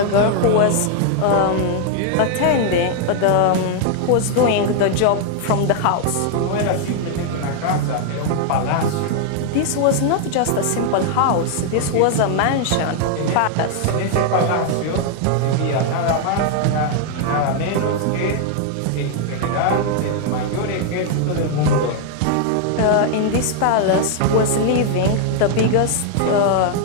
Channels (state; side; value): different; both; correlation 0.00